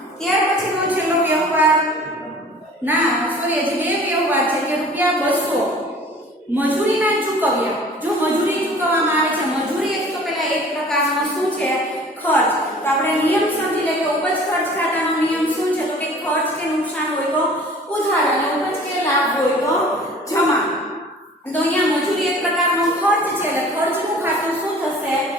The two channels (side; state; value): both; normal; correlation 0.47